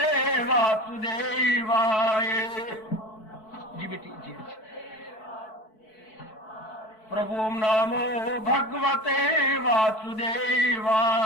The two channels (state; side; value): late; right; 4.6 ms